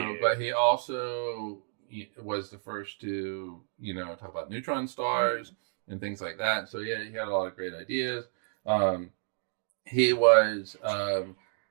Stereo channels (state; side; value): silent; left; digital silence